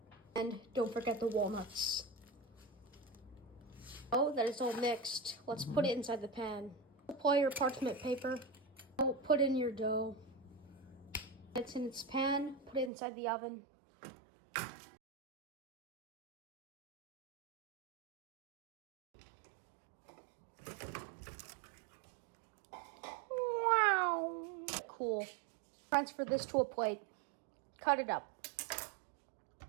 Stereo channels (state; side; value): drops out; left; at 12.9 s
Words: And don't forget the walnuts. Now that it's all mixed, let's put it inside the pan. Apply your parchment paper. Put in your dough. It's in its pan, put it inside the oven. Wow. Cool. Transfer this to a plate. Cut it up.